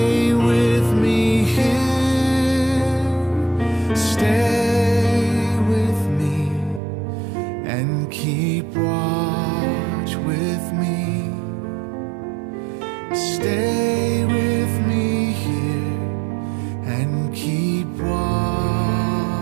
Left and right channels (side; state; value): left; drops out; at 6.8 s